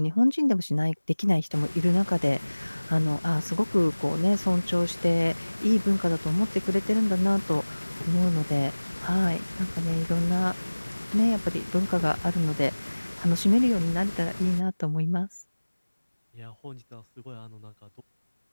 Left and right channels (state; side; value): inverted; both; correlation -1.00